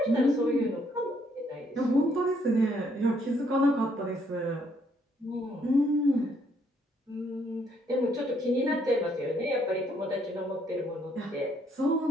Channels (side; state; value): both; normal; correlation 0.70